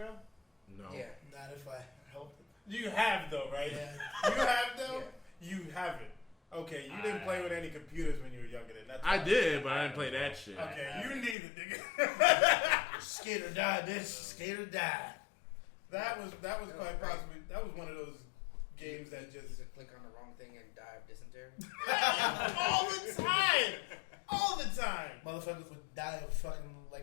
No. Yeah. Not if I helped it. You have though, right? Yeah. You have though? Yeah. You haven't. Okay, you didn't play with any computers when you were younger then. That's I did, but I didn't play that shit. Okay, you neither, nigga. Skate or die, bitch. Skate or die. That was quite possibly one of those games that just click on the wrong thing and die of dysentery. all the time. All the time. Motherfuckers would die of fucking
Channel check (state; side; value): drops out; right; at 11.4 s